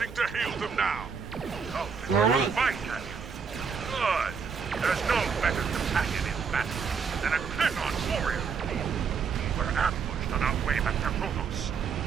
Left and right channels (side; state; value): left; quieter; 6.0 dB